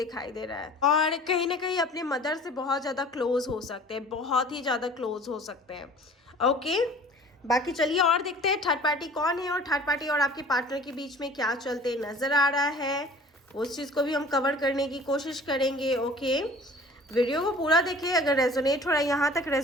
दे रहा है। और कहीं ना कहीं अपने मदर से बहुत ज़्यादा क्लोज हो सकते हैं, बहुत ही ज़्यादा क्लोज हो सकते हैं। ओके, बाकी चलिए और देखते हैं थर्ड पार्टी कौन है और थर्ड पार्टी और आपके पार्टनर के बीच में क्या चलते नज़र आ रहा है, उस चीज़ को भी हम कवर करने की कोशिश करेंगे। ओके, वीडियो को पूरा देखें, अगर रेजोनेट हो रहा है, यहाँ तक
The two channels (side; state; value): both; normal; correlation 0.46